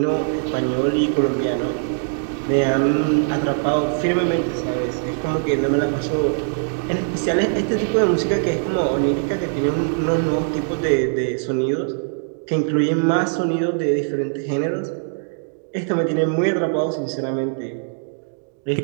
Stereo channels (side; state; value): left; silent; digital silence